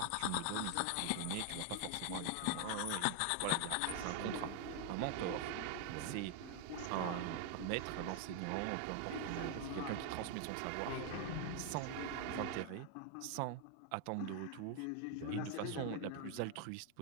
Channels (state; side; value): different; both; correlation 0.00